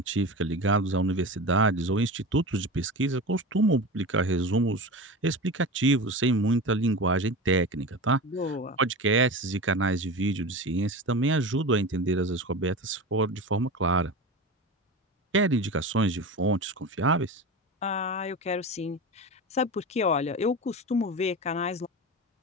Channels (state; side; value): normal; both; correlation 0.28